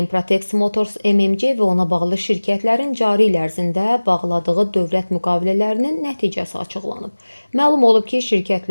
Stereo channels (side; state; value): both; inverted; correlation -1.00